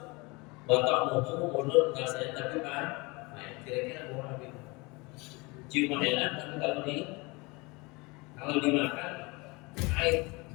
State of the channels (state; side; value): quieter; right; 26.0 dB